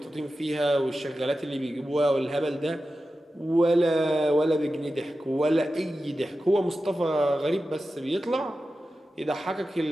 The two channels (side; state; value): both; normal; correlation 0.93